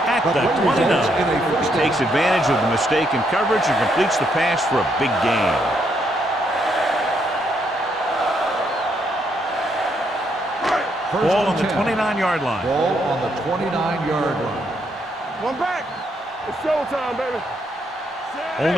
at the 29. He takes advantage of the mistake in coverage and completes the pass for a big gain. Ball on the 29-yard line. Ball on the 29-yard line. One back. It's showtime, baby.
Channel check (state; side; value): normal; both; correlation 0.75